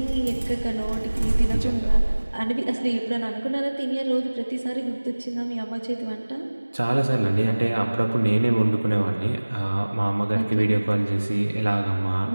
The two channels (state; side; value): inverted; both; correlation -1.00